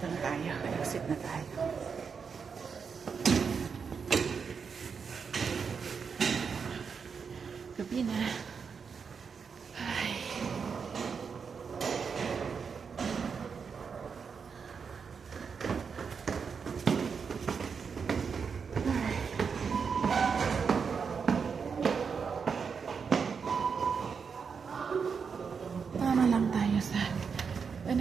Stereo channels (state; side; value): quieter; left; 6.0 dB